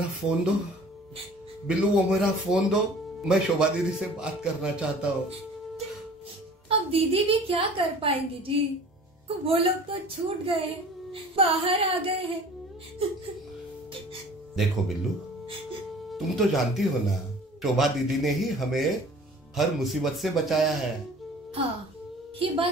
फोन दो, बिल्लू वो मेरा फोन दो, मैं शोभा दीदी से बात करना चाहता हूँ। अब दीदी भी क्या कर पाएंगी जी, वो लोग तो छूट गए, बाहर आ गए हैं। देखो बिल्लू, तुम तो जानती हो ना, शोभा दीदी ने ही हमें हर मुसीबत से बचाया है। हाँ, ये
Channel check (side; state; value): both; normal; correlation 0.46